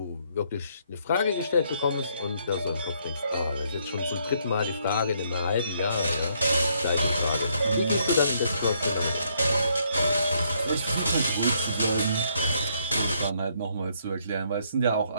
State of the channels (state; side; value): inverted; both; correlation -0.71